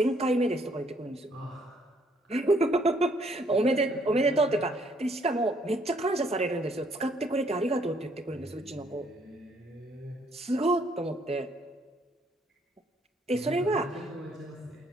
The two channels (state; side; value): normal; both; correlation 0.67